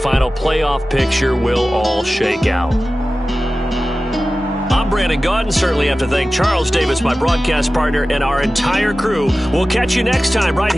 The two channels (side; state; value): both; normal; correlation 0.96